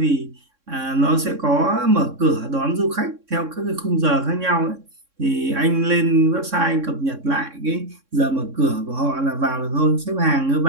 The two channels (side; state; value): left; late; 3.6 ms